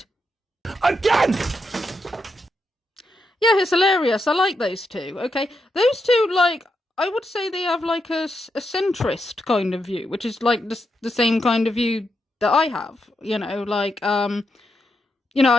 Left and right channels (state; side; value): normal; both; correlation 0.84